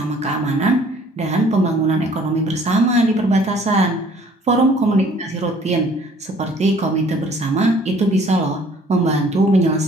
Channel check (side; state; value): both; normal; correlation 0.56